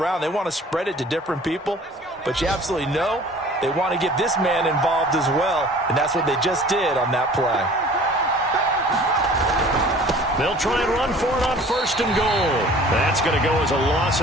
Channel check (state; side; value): normal; both; correlation 0.48